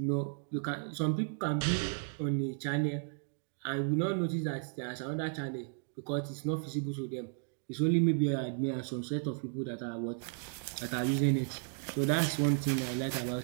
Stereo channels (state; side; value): silent; left; 55 dB below the other